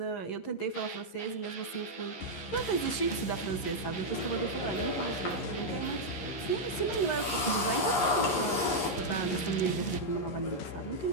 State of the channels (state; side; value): late; right; 11 ms